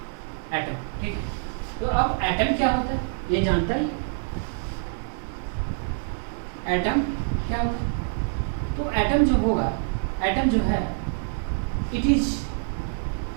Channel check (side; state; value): left; silent; digital silence